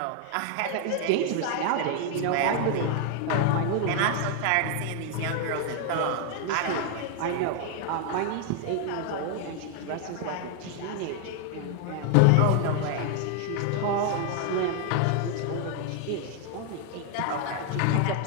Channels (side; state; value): both; different; correlation 0.00